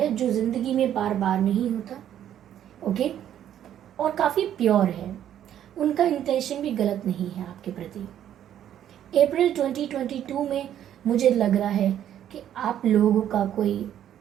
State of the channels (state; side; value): quieter; left; 10.6 dB